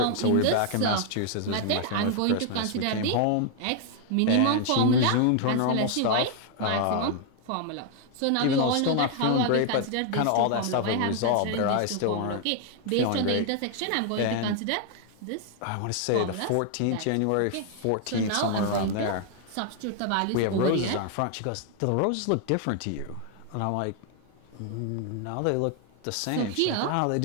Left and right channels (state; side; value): different; both; correlation 0.00